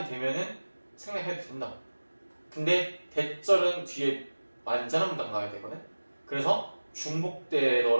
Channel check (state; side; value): inverted; both; correlation -1.00